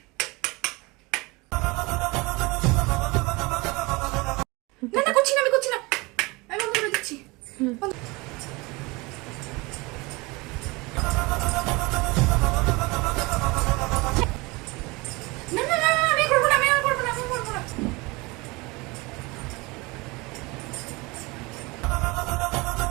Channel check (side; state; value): left; quieter; 24.6 dB